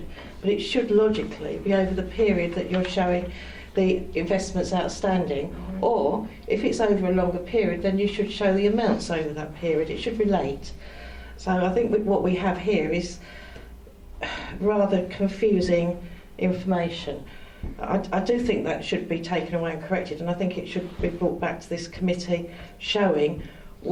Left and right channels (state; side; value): identical; both; correlation 1.00